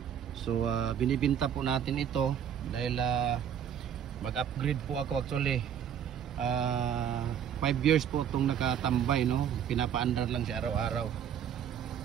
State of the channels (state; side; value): quieter; left; 8.9 dB